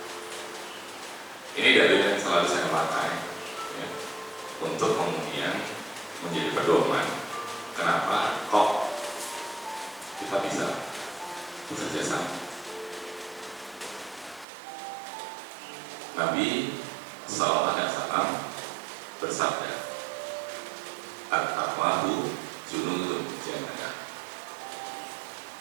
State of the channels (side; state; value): left; drops out; at 14.5 s